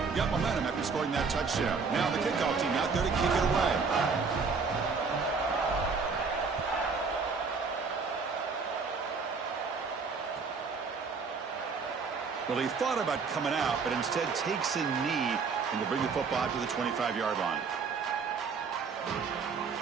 Got momentum after scoring that touchdown. Now the kickoff team out there to kick it away. Well, he thought about coming out, but instead takes a knee and to bring the football to the 25-yard line.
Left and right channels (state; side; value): quieter; left; 5.0 dB